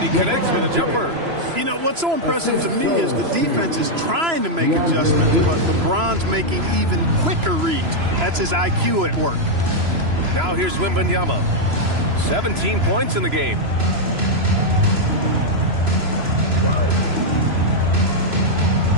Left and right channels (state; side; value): late; left; 3.0 ms